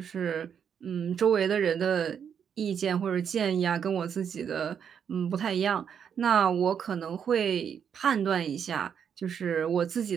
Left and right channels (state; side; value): quieter; left; 7.8 dB